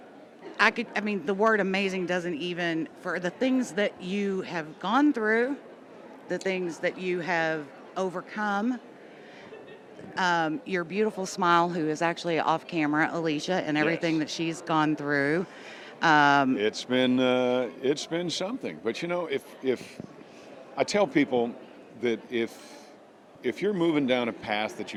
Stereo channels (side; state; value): both; identical; correlation 1.00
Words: The word amazing doesn't even, for the things that you have gone through, the things that you have overcome, your beautiful smile, who is actually off camera, Alicia, and everything Yes. that she's gone through. It's been something. But if I tell people that if you're moving down a path that